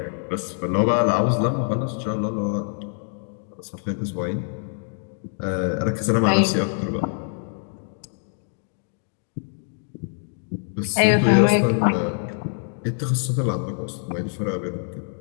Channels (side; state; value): right; silent; 59 dB below the other